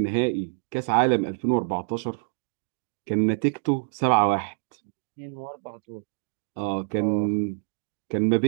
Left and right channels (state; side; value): silent; left; digital silence